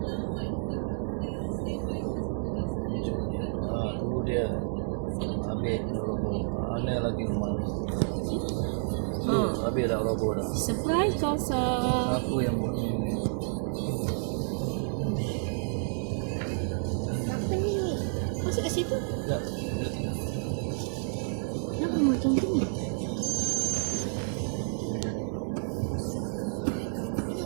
dia ambil mana lagi rumah habis dah logo dah. Surprise Kosa. Aku yang buat ni. Apa ni? Masuk ke situ? Tak, dia tengok. Kenapa macam tu ni?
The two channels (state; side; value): silent; left; digital silence